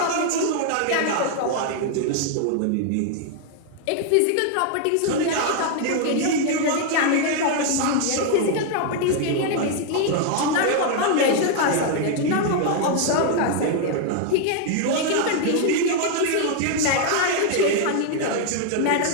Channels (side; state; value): both; different; correlation 0.00